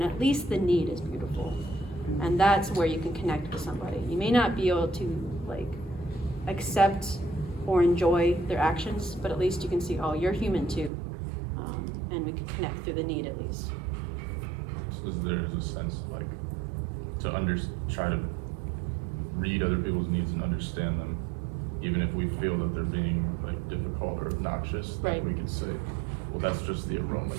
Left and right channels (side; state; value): left; drops out; at 10.9 s